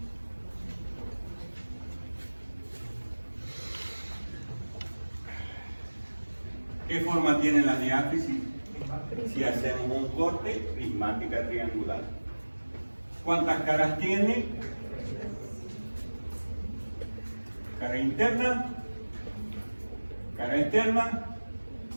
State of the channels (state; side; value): inverted; both; correlation -1.00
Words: ¿Qué forma tiene la diáfisis? Si hacemos un corte, prismática triangular. ¿Cuántas caras tiene? Cara interna, cara externa,